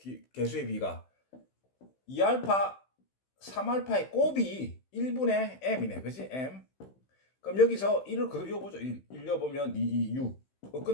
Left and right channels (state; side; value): late; right; 15 ms